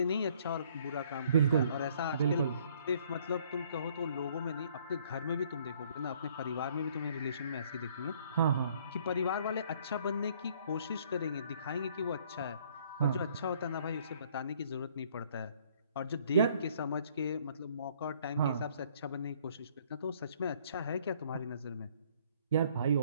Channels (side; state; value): both; inverted; correlation -0.61